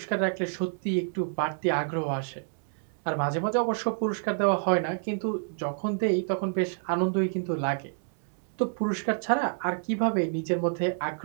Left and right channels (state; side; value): silent; left; 59 dB below the other